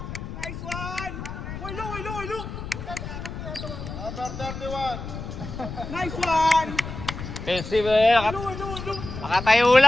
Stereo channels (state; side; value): noise; left; rumble, 8 dB below the sound